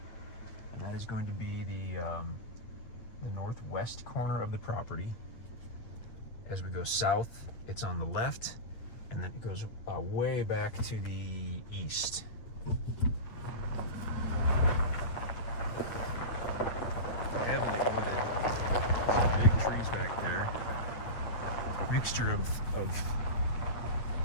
And that is going to be the northwest corner of the property. As we go south, it's on the left, and then it goes way back to the east. Heavily wooded. Some big trees back there. Mixture of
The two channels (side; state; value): right; late; 9.0 ms